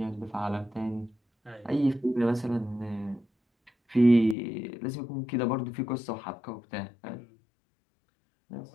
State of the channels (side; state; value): right; drops out; at 4.4 s